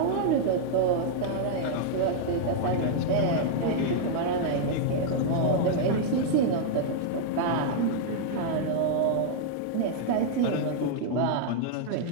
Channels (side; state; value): both; different; correlation -0.01